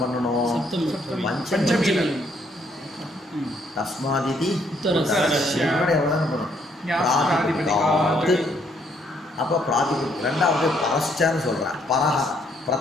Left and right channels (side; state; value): both; normal; correlation 0.69